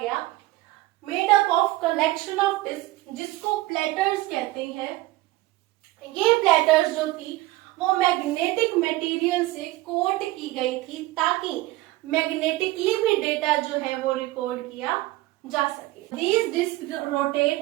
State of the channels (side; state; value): left; quieter; 18.4 dB